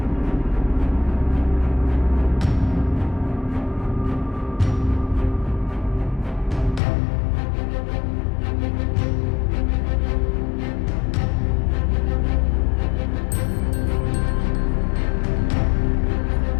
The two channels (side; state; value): right; drops out; at 6.8 s